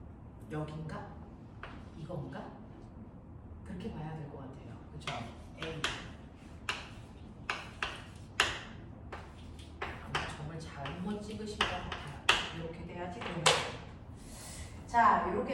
여긴가? 이건가? 그렇게 봐야 될 것 같아요. 그쵸? A. 아마 정말 잘못 찍으신 것 같아요. 이렇게 돼야지 되는 거예요. 자,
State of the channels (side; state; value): both; identical; correlation 1.00